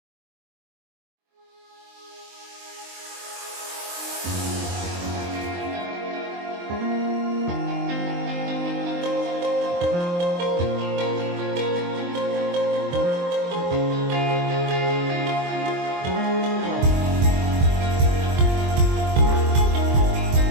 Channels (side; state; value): left; late; 23 ms